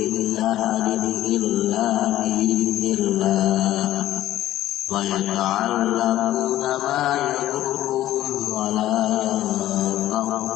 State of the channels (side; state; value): right; quieter; 14.0 dB